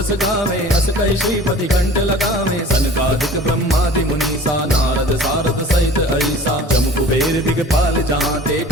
गावे, अस कहि श्रीपति कंठ लगावे। सनकादिक ब्रह्मादि मुनीसा, नारद सारद सहित अहिसा। जम कुबेर दिगपाल जहांते,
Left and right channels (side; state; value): both; normal; correlation 0.44